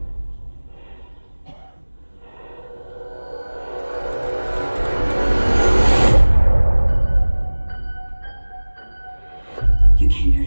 You came here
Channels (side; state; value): both; inverted; correlation -1.00